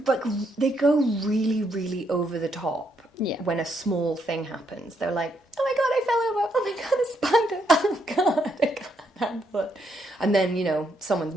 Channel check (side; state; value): both; normal; correlation 0.75